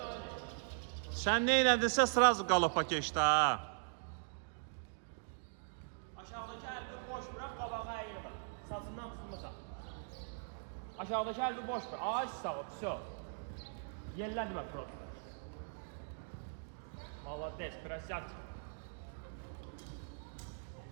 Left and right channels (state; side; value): silent; left; digital silence